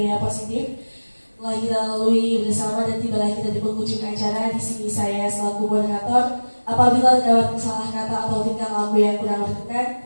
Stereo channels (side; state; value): both; inverted; correlation -1.00